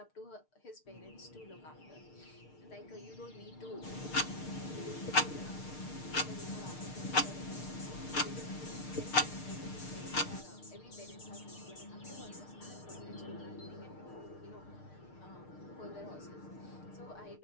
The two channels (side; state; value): right; late; 6.6 ms